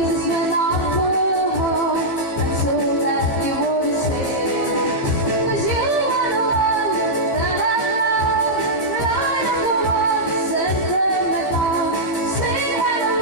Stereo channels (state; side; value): late; right; 15 ms